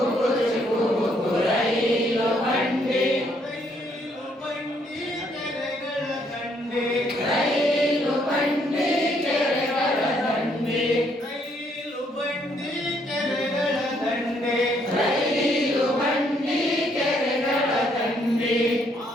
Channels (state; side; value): normal; both; correlation 0.70